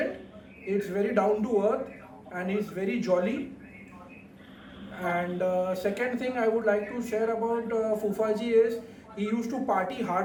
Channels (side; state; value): both; identical; correlation 1.00